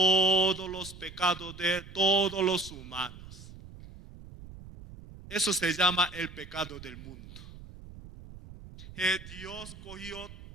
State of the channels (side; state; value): right; noise; rumble, 16 dB below the sound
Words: los pecados de todos los humanos. Eso se llama el pecado del mundo. Dios cogió